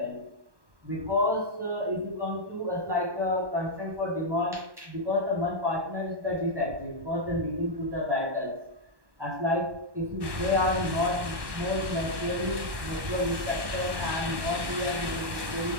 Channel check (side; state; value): left; late; 1.1 ms